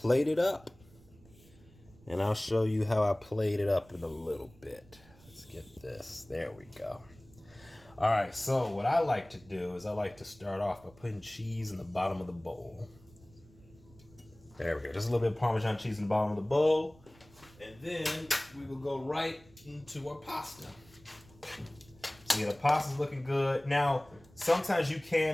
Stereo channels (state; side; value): noise; right; rumble, 25 dB below the sound